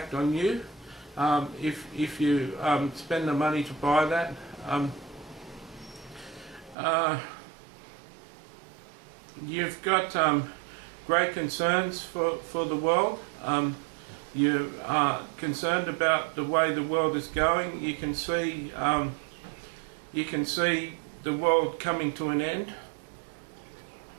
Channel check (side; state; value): left; drops out; at 6.8 s